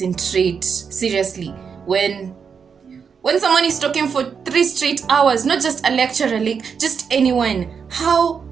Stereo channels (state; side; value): quieter; left; 6.4 dB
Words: seriously, when someone is talking for 3 straight hours, not just a lecturer, like just anyone.